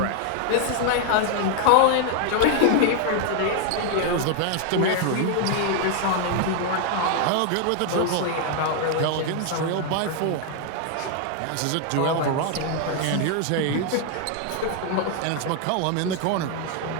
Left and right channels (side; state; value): both; different; correlation 0.00